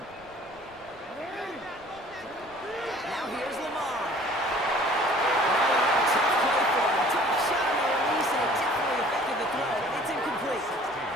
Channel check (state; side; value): noise; right; rumble, 27 dB below the sound